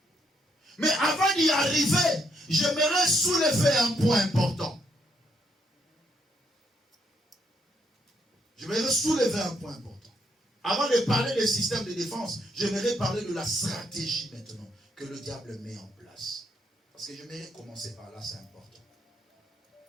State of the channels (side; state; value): both; normal; correlation 0.74